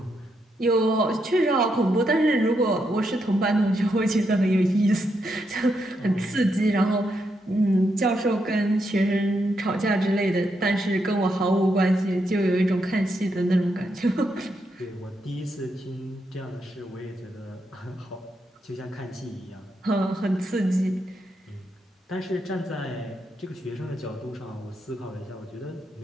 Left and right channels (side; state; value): both; normal; correlation 0.81